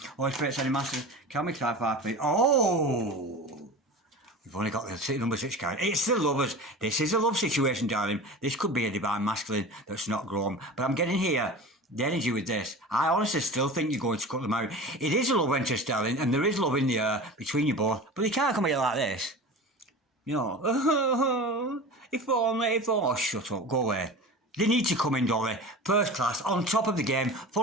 Holy Spirit, Ascending Masters, can we clarify, please? Oh! We've only got the number 6 card. It's the lovers. This is a love situation, darling. This could be a divine masculine that's not grown. But I'm getting here the energy with this. I honestly still think you're going to cut them out. It is a love interest, darling, and there is love in the air between you both. But they can't come here like this. If only. Oh, shut up. Go away. They need to come in, don't they? First class, on top of the game,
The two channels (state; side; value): normal; both; correlation 0.33